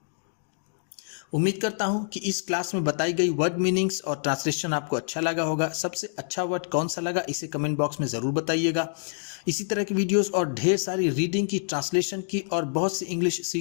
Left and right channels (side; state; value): right; silent; digital silence